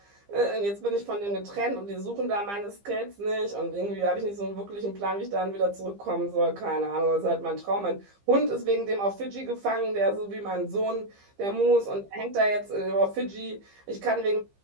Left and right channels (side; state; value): left; late; 15 ms